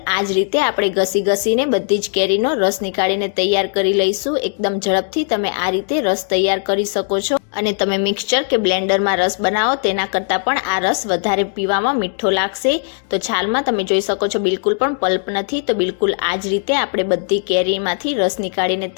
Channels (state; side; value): silent; right; 60 dB below the other